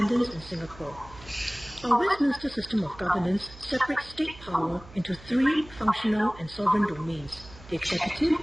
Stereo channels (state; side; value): noise; right; hum, 19 dB below the sound